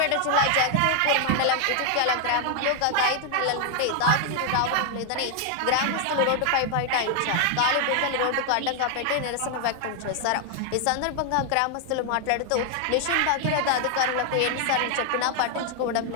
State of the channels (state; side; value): different; both; correlation 0.00